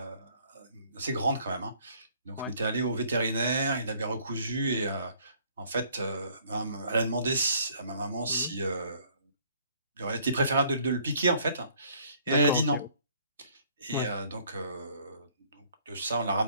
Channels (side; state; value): both; inverted; correlation -0.60